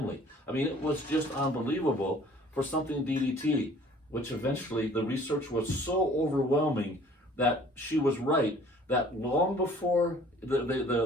I mean, it was just unbelievable for something DDT, which eventually the research was so overwhelming that she was right, that long before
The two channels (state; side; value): normal; both; correlation 0.53